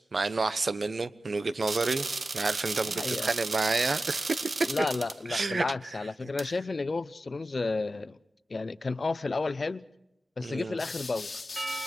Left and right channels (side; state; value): both; normal; correlation 0.93